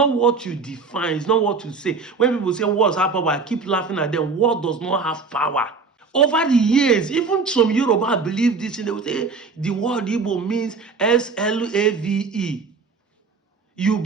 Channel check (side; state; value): left; quieter; 4.6 dB